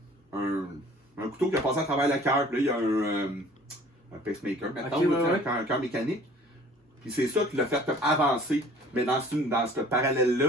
un couteau qui a passé à travers le cœur, puis là, il y a un pacemaker, maintenant, Ok, ouais. un cœur mécanique. Puis c'est ça qui l'a fait comme avancer. Mais dans ce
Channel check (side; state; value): both; normal; correlation 0.50